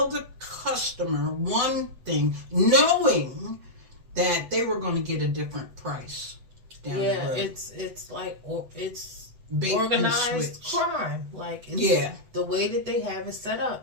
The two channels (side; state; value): left; late; 8.0 ms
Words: the customer one thing, knowing that they were going to get a different price down the road. It's like it's Bait organized crime. Like it's the way that they have it set